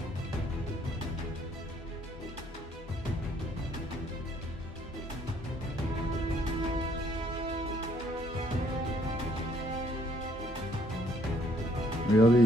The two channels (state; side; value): normal; both; correlation 0.66